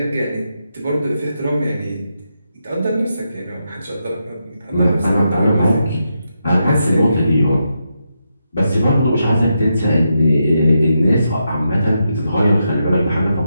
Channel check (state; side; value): inverted; both; correlation -0.84